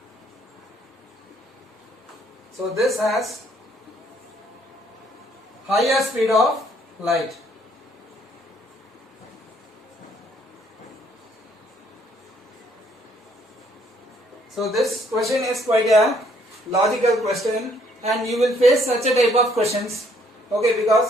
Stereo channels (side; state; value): both; normal; correlation 0.66